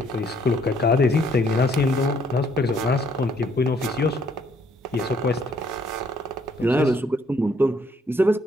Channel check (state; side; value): normal; both; correlation 0.66